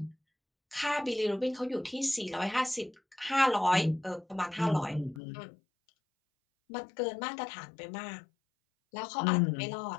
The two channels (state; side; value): drops out; right; at 5.2 s